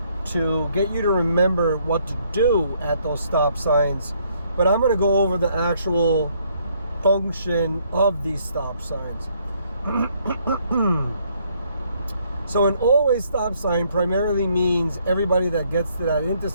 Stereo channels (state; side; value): inverted; both; correlation -0.68